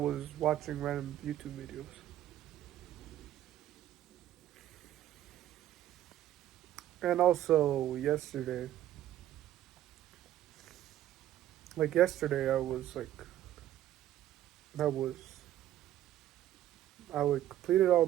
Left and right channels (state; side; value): quieter; left; 12.6 dB